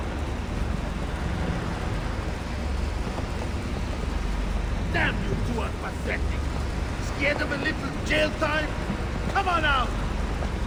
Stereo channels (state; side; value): identical; both; correlation 1.00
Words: Damn, you two are pathetic. Scared of a little jail time? Come on out.